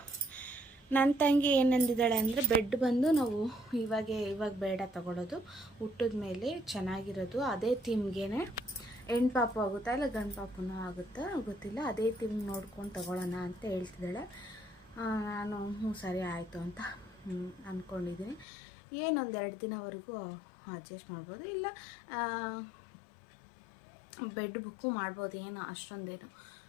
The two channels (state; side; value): drops out; right; at 18.4 s